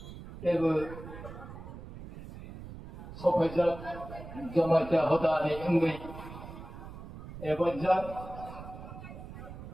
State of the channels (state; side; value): noise; right; rumble, 13 dB below the sound